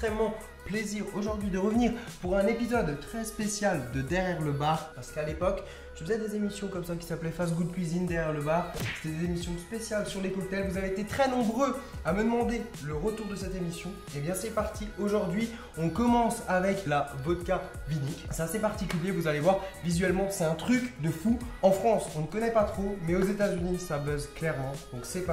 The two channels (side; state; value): both; identical; correlation 1.00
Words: plaisir aujourd'hui de revenir pour un épisode très spécial de Derrière le bar. Parce qu'à l'époque, je faisais des émissions comme ça qui s'appelaient Fast Good Cuisine Derrière le bar. C'était des émissions spéciales sur les cocktails. Vous avez été très nombreux à me demander le retour de cette émission. Et bien c'est parti. Aujourd'hui, on commence avec la vodka vinique. C'est assez particulier, vous allez voir. Visuellement, c'est un truc de fou. En France, on ne connaît pas trop, mais aux États-Unis, ça buzz clairement. Donc c'est